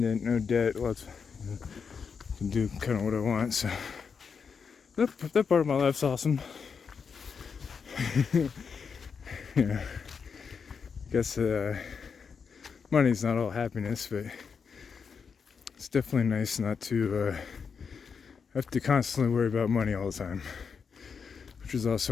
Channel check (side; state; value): right; quieter; 6.0 dB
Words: no debt, can do kind of what I want. So that part of my life's awesome. I guess money's not all happiness, but it's definitely nice not to have to constantly worry about money all the time. Which is